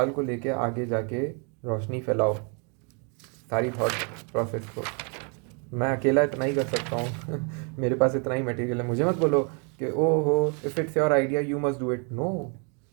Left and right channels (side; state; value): left; quieter; 37.0 dB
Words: को लेके आगे जाके रोशनी फैलाओ सारी thought process को। मैं अकेला इतना ही कर सकता हूँ मेरे पास इतना ही मटेरियल है। मुझे मत बोलो कि ओ हो, if it's your idea you must do it. No,